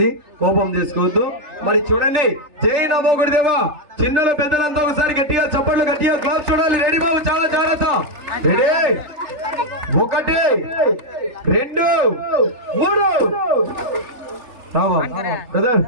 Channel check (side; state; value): left; late; 3.4 ms